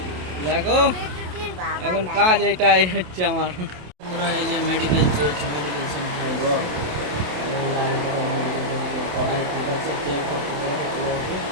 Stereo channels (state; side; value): late; left; 27 ms